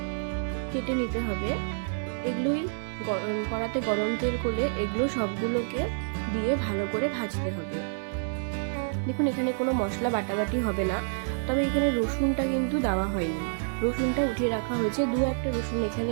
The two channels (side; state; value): left; silent; digital silence